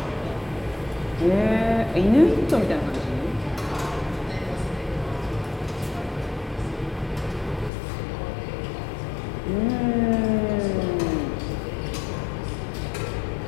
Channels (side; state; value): right; drops out; at 7.7 s